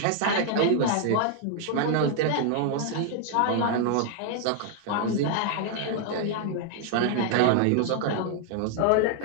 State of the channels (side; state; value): both; different; correlation 0.00